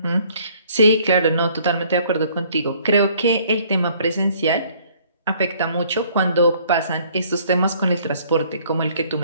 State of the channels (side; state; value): both; inverted; correlation -0.60